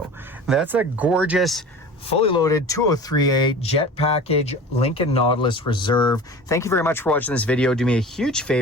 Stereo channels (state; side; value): normal; both; correlation 0.38